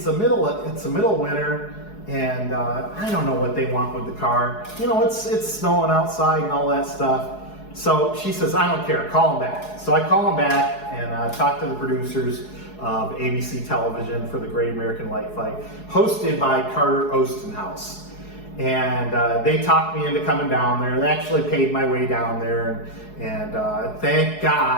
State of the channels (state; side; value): late; right; 4.7 ms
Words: a middle of winter. And I don't know what they want with the car. You know, it's snowing outside and all that stuff. So she says, I don't care, call them back. So I call them back and talk to the producers of ABC Television for the Great American Light Fight, hosted by Carter Ostenhouse. And they talked me into coming down there. They actually paid my way down there. And thank